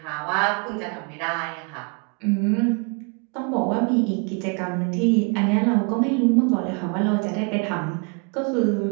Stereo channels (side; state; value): left; quieter; 34.2 dB